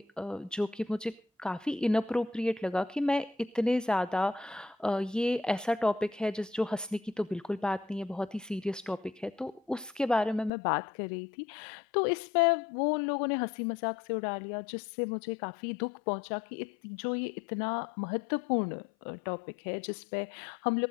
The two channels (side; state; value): right; drops out; at 10.5 s